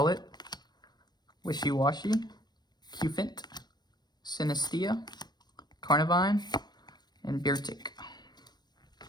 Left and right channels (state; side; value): late; right; 0.20 ms